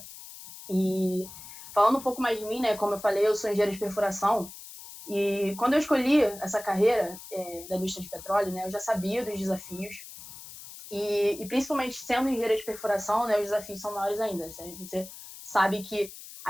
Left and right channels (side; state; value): left; noise; hiss, 15 dB below the sound